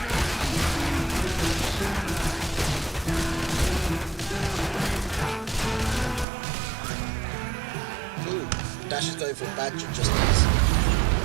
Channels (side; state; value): left; drops out; at 6.2 s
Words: Ooh, Dash is going for a badger just as...